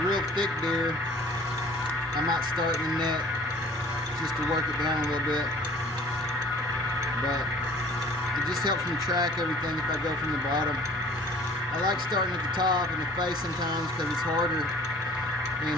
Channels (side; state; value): both; normal; correlation 0.50